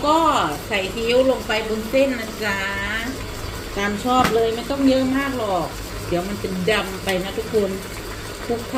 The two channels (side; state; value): both; identical; correlation 1.00